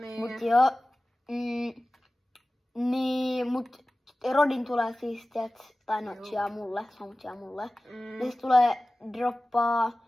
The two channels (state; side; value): normal; both; correlation 0.97